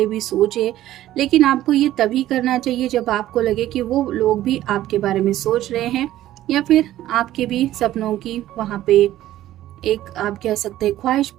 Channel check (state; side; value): quieter; left; 13.9 dB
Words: भी सोचें, लेकिन आपको ये तभी करना चाहिए जब आपको लगे कि वो लोग भी आपके बारे में सोच रहे हैं या फिर आपके भी सपनों की वहाँ पे एक आप कह सकते हैं ख्वाहिश